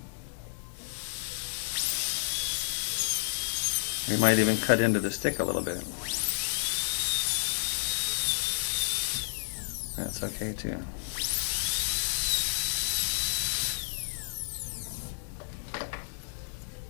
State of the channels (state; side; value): silent; right; digital silence